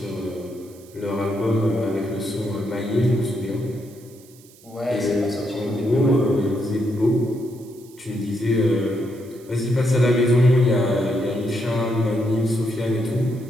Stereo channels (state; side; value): noise; right; hiss, 25 dB below the sound